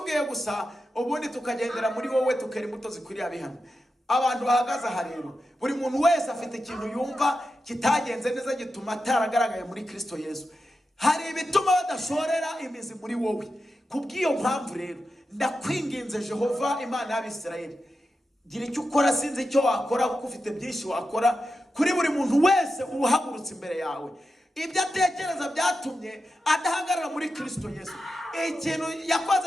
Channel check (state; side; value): normal; both; correlation 0.90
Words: gusa, ubundi tukagendera muri wowe, tukera imbuto zikwiriye abihano. Abantu bahagaze aha rero, buri muntu wese afite ikintu yumva kitagenze neza gituma ataragaragaye muri Kristo Yesu. Hari ibituma badashorera imizi muri wowe. Kubw'iyo mpamvu rero ndakwinginze Jehova Imana y'Abisirayeli, gira icyo ukora. Sinzi icyo wakora kuko ufite byinshi wakora kuri buri muntu wese uhagurutse imbere yawe. Ibyo atekereza byatumye adahagarara muri Kristo Yesu. Ikintu